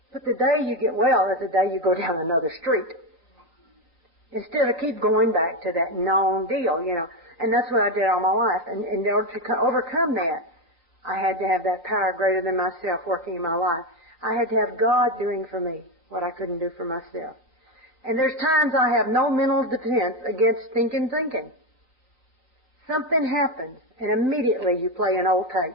But the day you get well is the day you go down another street. Instead of keep going back to that known deal, you know. And that's what I did all my life. And in order to overcome that, I had to have that power greater than myself working in my life. I had to have God doing for me what I couldn't do for myself. And there's times I have no mental defense against thinking. Something happens, and immediately you play an old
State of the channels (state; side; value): late; right; 3.9 ms